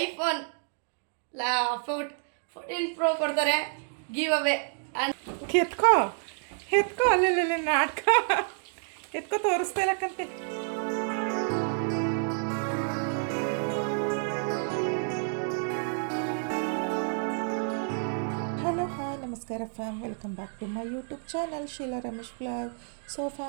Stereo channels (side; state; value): left; silent; 58 dB below the other